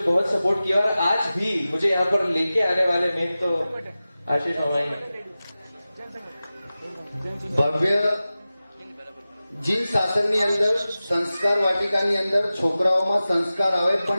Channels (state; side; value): inverted; both; correlation -0.95